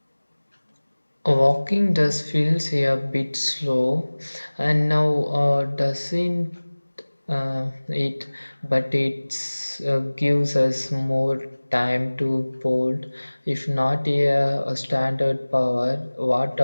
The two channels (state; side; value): inverted; both; correlation -1.00